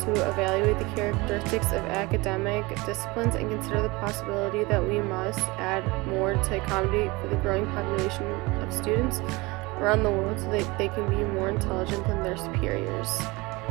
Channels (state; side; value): quieter; left; 23.8 dB